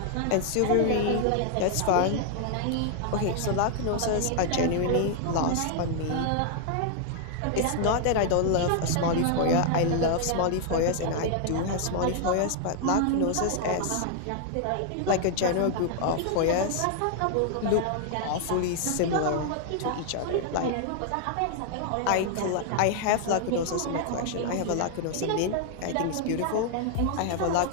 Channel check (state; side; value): different; both; correlation 0.00